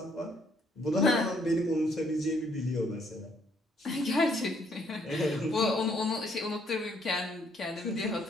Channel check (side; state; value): both; normal; correlation 0.68